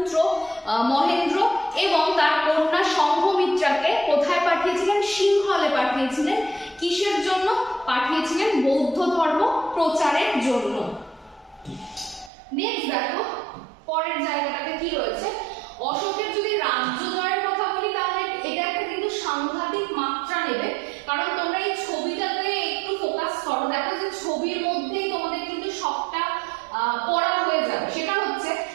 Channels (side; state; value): left; drops out; at 12.3 s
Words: মহেন্দ্র এবং তার কন্যা সংঘমিত্রাকে কোথায় পাঠিয়েছিলেন? সিংহলে পাঠিয়েছিলেন। কিসের জন্য পাঠিয়েছিলেন? বৌদ্ধ ধর্ম প্রচারের জন্য। নেক্সট দেখো পরের জায়গাটাতে কি রয়েছে। অশোকের যদি রাজ্য জয়ের কথা বলি তাহলে এটা একটা কিন্তু সাংঘাতিক মাত্রা নেবে, কারণ তোমরা এই ছবিটাতে একটু ফোকাস করো, দেখো যে ছবির মধ্যেই তোমাদের কিন্তু সবটা পড়া হয়ে যাবে। সেটা হচ্ছে